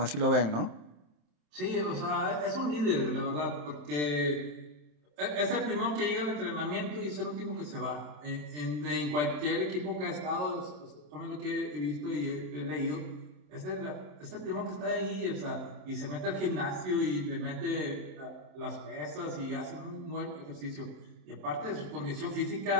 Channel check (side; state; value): left; late; 27 ms